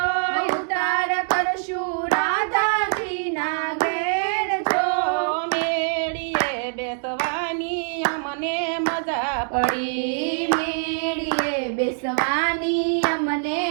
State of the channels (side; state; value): left; silent; digital silence